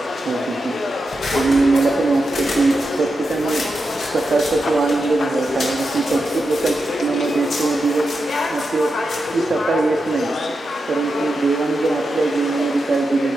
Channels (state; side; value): normal; both; correlation 0.88